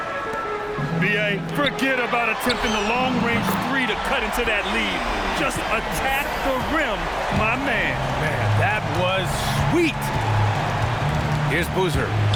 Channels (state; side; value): identical; both; correlation 1.00